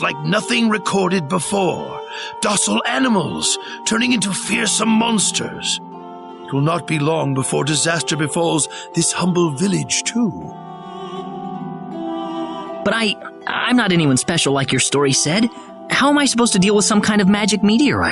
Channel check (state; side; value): identical; both; correlation 1.00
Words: like nothing recorded before. Docile animals turning into fearsome monsters. It will not be long before disaster befalls this humble village, too. But I'm not anyone special like your story said. How am I supposed to deal with some kind of magic